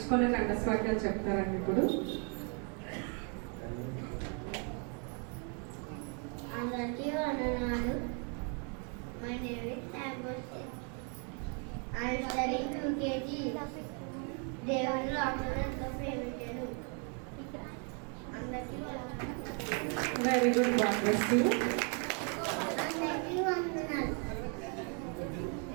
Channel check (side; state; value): left; quieter; 38.8 dB